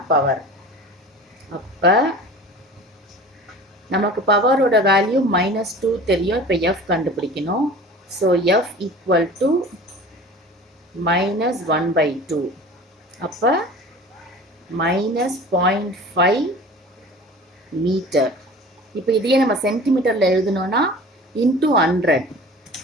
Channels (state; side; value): normal; both; correlation 0.41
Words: பவர். அப்போ நமக்கு பவரோட வேல்யூ -2 தெரியும், இப்போ F கண்டுபிடிக்கணும். ஸோ F ஈக்குவல் டு -1/2, அப்போ -0.5 மீட்டர். இப்போ இதையே நம்ம சென்டிமீட்டரில் எழுதணும்னா இன்ட்டு 100